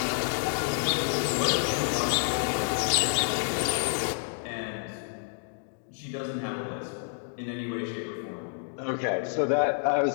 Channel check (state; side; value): silent; right; digital silence